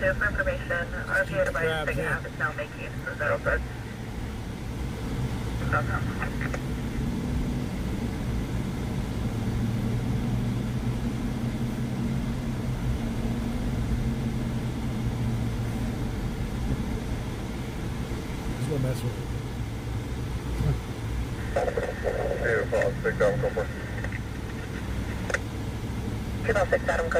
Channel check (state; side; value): identical; both; correlation 1.00